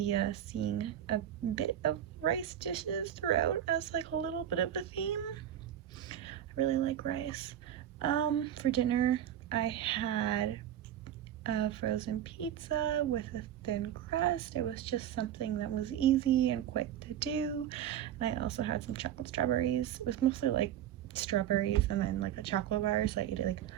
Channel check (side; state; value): left; quieter; 10.7 dB